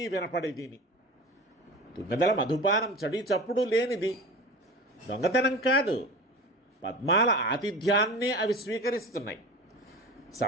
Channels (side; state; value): both; normal; correlation 0.34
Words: వినపడేదిని. తుమ్మెదల మధుపానం చడి చప్పుడు లేనిది, దొంగతనం కాదు, పద్మాల ఆతిథ్యాన్నే అవి స్వీకరిస్తున్నాయి.